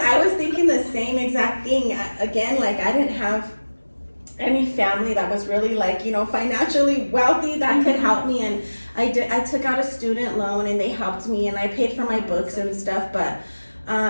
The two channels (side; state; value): both; inverted; correlation -1.00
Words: was thinking the same exact thing. Again, like, I didn't have any family that was really like, you know, financially wealthy that could help me, and I took out a student loan, and they helped me, and I paid for my books and stuff. But